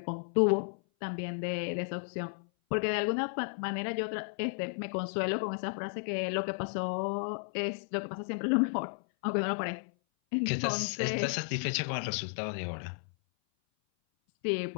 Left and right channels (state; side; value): silent; right; 56 dB below the other